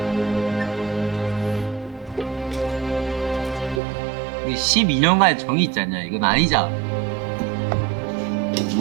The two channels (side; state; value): left; drops out; at 3.8 s